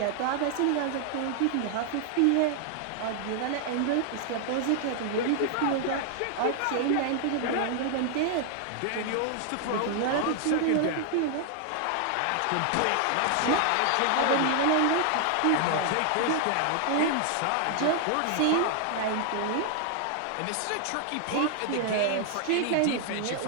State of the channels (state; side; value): different; both; correlation 0.00